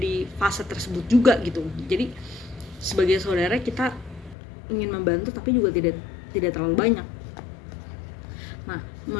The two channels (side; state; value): right; drops out; at 4.4 s